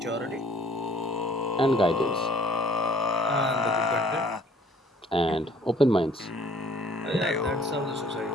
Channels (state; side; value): normal; both; correlation 0.56